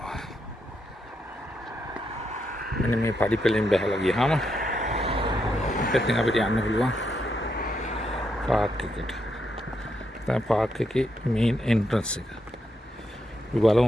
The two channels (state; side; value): normal; both; correlation 0.80